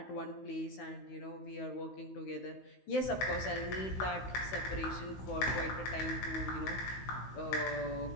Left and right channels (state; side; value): late; right; 16 ms